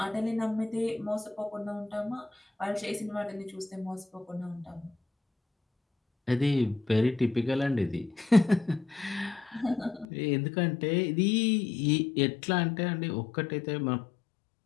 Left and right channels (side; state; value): right; drops out; at 10.1 s